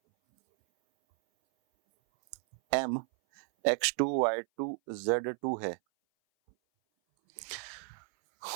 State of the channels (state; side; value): silent; left; 56 dB below the other